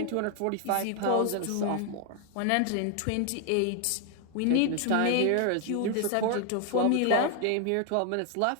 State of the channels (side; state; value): both; different; correlation 0.00